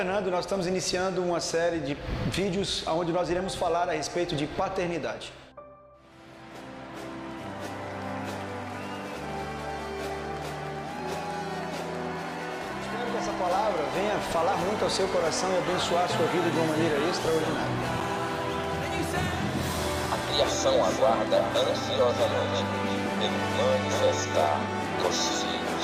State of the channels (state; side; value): identical; both; correlation 1.00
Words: e nós estamos iniciando uma série de vídeos onde nós iremos falar a respeito de paternidade. Espero que essa palavra venha falar muito ao seu coração e abençoar a sua vida de uma maneira extraordinária. A criação aguarda ansiosamente pelo manifestar dos